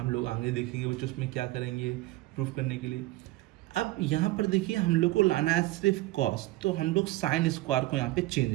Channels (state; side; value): quieter; left; 18.2 dB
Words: लोग आगे देखेंगे बच्चों उसमें क्या करेंगे प्रूफ करने के लिए। अब यहाँ पर देखिए हम लोग को लाना है सिर्फ कॉस, तो हम लोग साइन स्क्वायर को यहाँ पे